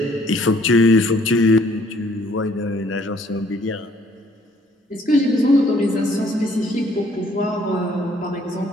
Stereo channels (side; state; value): both; normal; correlation 0.62